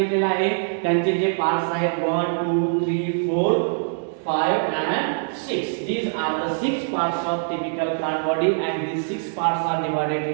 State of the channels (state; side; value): silent; left; digital silence